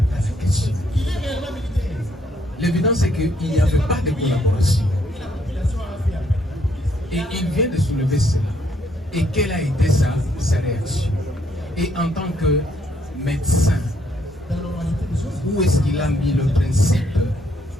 à la question. L'évidence est qu'il n'y avait pas de collaboration. Et il vient de soulever cela. Et quelle a été sa réaction? Et en tant que médecin, où est-ce qu'il a mis le principe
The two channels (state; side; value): normal; both; correlation 0.71